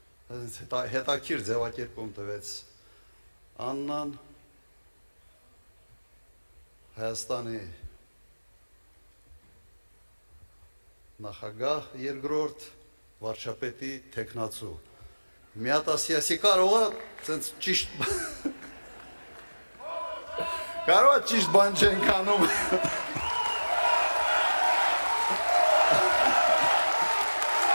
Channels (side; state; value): both; inverted; correlation -1.00